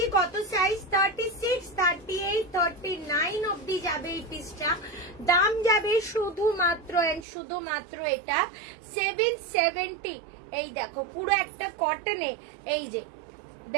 কত সাইজ, 36, 38, 39 অব্দি যাবে এই পিসটা। দাম যাবে শুধুমাত্র এটা 770। এই দেখো পুরো একটা কটনে, এই যে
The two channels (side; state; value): left; drops out; at 7.2 s